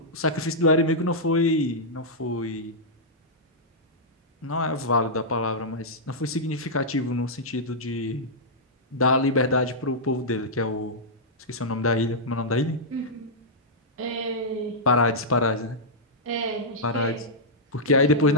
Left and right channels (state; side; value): normal; both; correlation -0.09